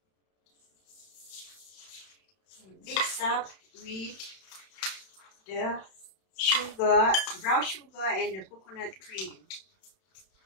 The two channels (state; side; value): late; right; 31 ms